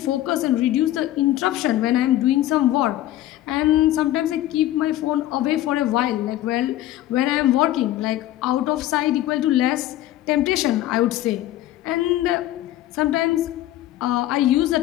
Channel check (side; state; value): right; quieter; 14.1 dB